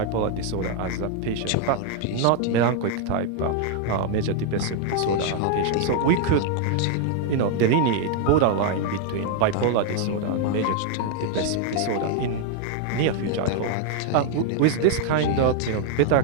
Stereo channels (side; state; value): both; different; correlation 0.00